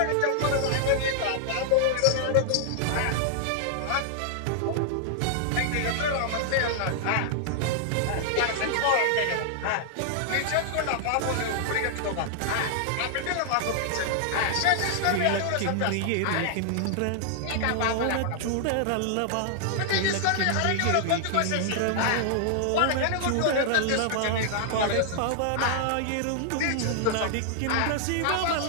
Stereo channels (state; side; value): different; both; correlation -0.01